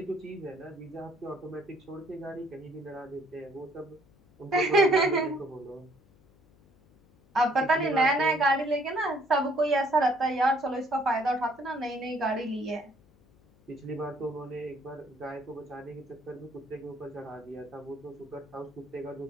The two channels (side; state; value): left; noise; hum, 29 dB below the sound